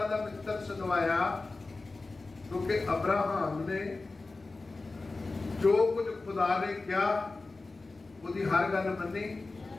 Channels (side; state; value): right; quieter; 3.5 dB